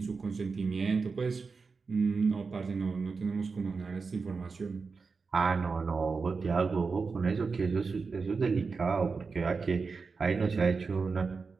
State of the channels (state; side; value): quieter; left; 4.7 dB